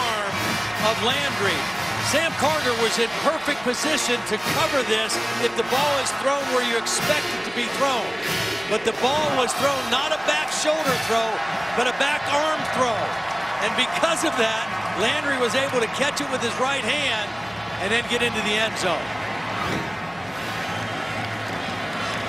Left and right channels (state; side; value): noise; left; hum, 24 dB below the sound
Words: of Landry. Sam Carter was in perfect position to cover this if the ball is thrown where you expect it to be thrown. But the ball was thrown not a back shoulder throw, but a back arm throw. And because of that, Landry was able to catch it with his right hand and then get into the end zone.